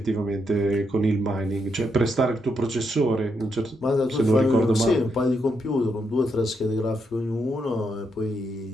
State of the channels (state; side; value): normal; both; correlation 0.80